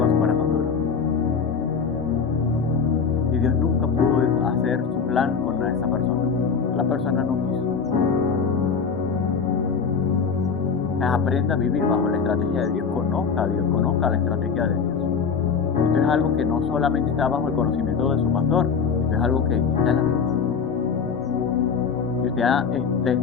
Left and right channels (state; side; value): quieter; right; 5.9 dB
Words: su corazón duro. Y Dios nunca pudo hacer su plan con esa persona. La persona no quiso. Aprenda a vivir bajo la estrategia de Dios. Conozca a Dios, conozca la estrategia de Dios. Esto es algo que no solamente está bajo el conocimiento de su pastor. Esto es algo que está en la Biblia. Y usted